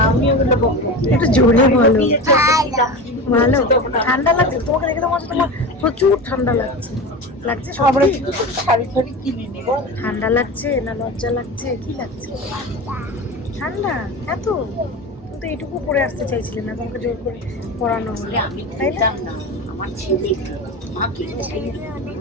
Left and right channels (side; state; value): both; normal; correlation 0.27